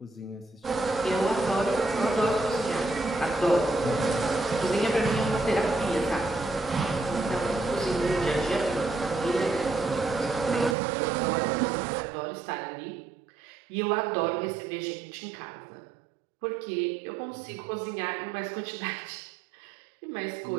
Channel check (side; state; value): left; drops out; at 10.8 s